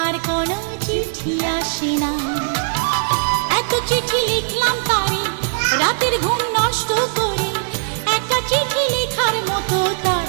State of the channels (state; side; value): silent; left; 66 dB below the other